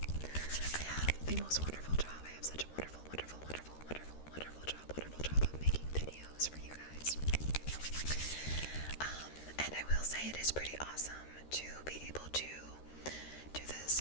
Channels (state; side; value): late; right; 13 ms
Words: I have the most wonderful job. I have such a wonderful job of making videos for you guys. And I will say it is pretty awesome to be able to do this